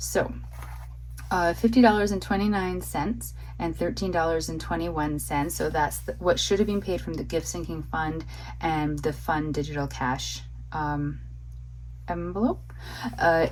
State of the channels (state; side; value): identical; both; correlation 1.00